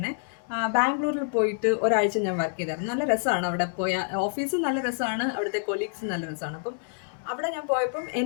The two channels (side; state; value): right; silent; digital silence